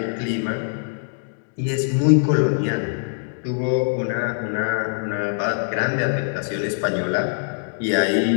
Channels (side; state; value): right; silent; digital silence